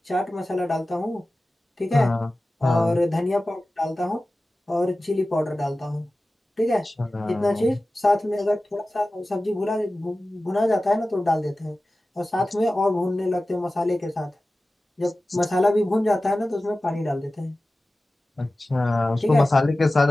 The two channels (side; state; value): both; normal; correlation 0.96